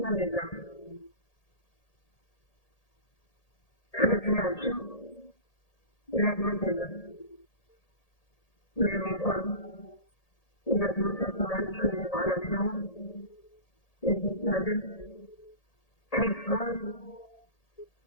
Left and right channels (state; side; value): late; right; 1.8 ms